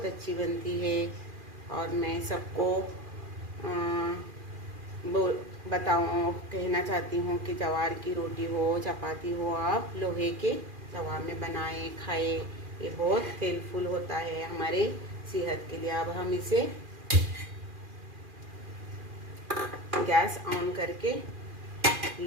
अच्छी बनती है। और मैं सबको कहना चाहती हूँ कि जवार की रोटी हो चपाती हो आप लोहे के तवा में बनाएं खाएं, ये बहुत हेल्पफुल होता है हमारे सेहत के लिए। अब हम इसे गैस ऑन करके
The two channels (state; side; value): late; left; 2.4 ms